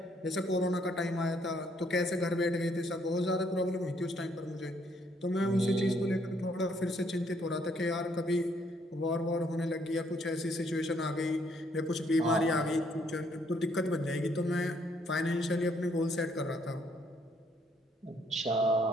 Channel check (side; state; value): both; normal; correlation 0.68